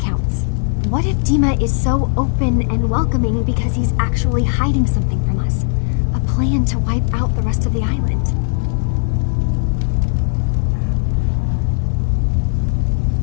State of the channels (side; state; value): right; silent; digital silence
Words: What if Dima is so open and welcoming because he's actually hiding something from us? A plan to wipe out the rest of the island.